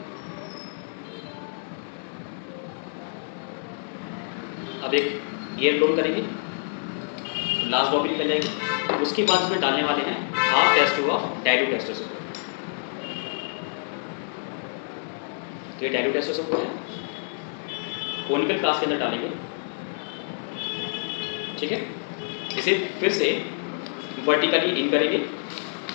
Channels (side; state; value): right; silent; digital silence